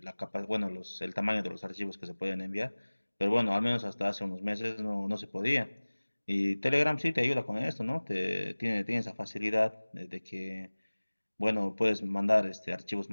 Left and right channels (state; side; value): inverted; both; correlation -1.00